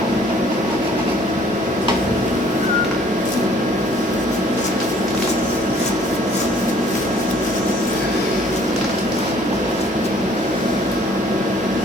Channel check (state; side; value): normal; both; correlation 0.58